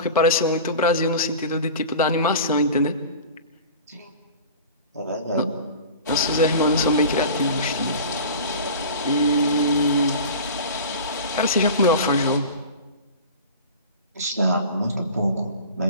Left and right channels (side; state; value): both; inverted; correlation -0.36